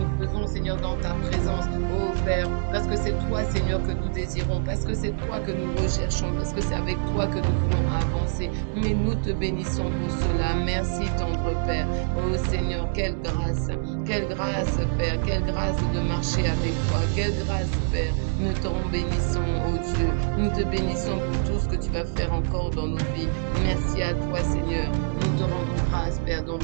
faisons, Seigneur, dans ta présence, oh Père, parce que c'est toi, Seigneur, que nous désirons, parce que c'est toi que nous recherchons, parce que c'est avec toi que nous voulons avancer. Mais nous te bénissons pour cela. Merci, tendre Père. Oh Seigneur, quelle grâce, Père, quelle grâce de marcher avec toi, quelle grâce, Père. Nous t'en bénissons, oh Dieu. Nous te bénissons pour tout ce que tu vas faire encore dans nos vies. Merci à toi, Seigneur. Nous te rendons grâce, Père, dans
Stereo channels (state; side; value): silent; left; digital silence